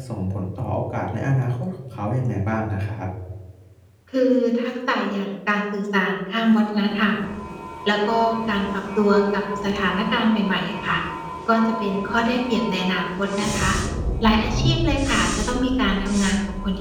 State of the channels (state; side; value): identical; both; correlation 1.00